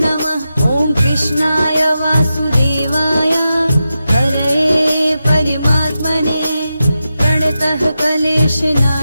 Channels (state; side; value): inverted; both; correlation -0.91